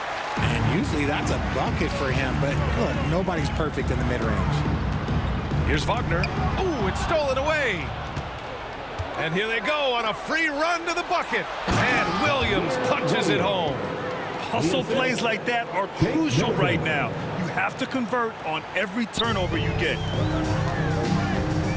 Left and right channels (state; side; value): identical; both; correlation 1.00